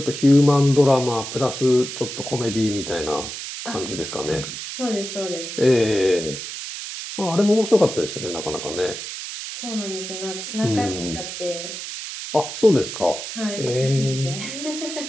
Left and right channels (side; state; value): right; noise; hiss, 8 dB below the sound